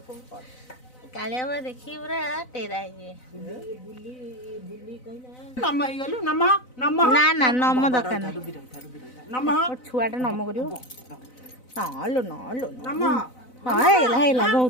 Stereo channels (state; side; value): late; right; 4.0 ms